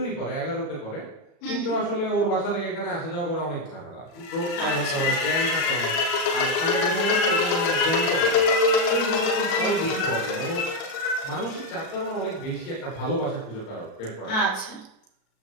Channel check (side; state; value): right; late; 37 ms